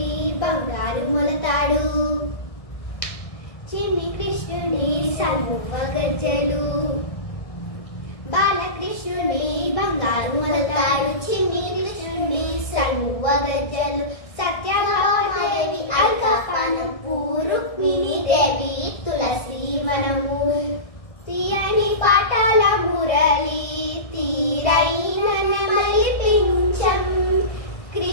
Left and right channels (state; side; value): late; right; 1.6 ms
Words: బంగారు మొలతాడు, చిన్ని కృష్ణుని సమువ గజ్జలు. బాలకృష్ణుని బంగారు మొలతాడు, చిన్ని కృష్ణుని సమువ గజ్జలు. సత్యభామాదేవి అల్కపానపు, రుక్మిణీ దేవి తులసి వనము. తీయని పాఠాల మురళి, తీరైన నెమలి పింఛం.